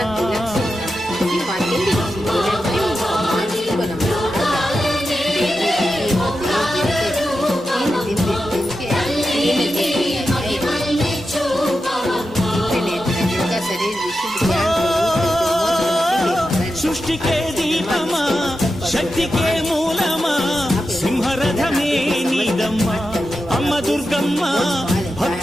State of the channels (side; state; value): both; normal; correlation 0.90